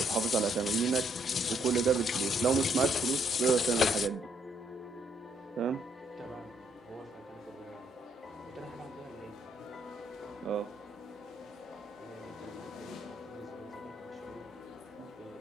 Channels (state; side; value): normal; both; correlation 0.71